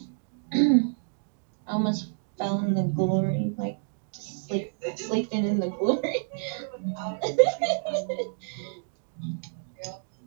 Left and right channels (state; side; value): silent; left; digital silence